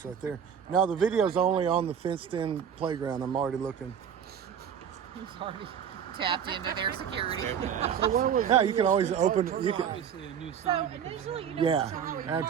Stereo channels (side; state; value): left; quieter; 8.2 dB